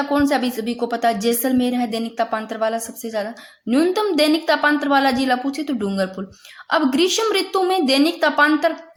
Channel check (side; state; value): both; identical; correlation 1.00